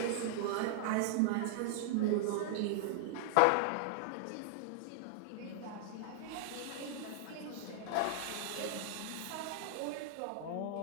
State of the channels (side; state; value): both; different; correlation 0.00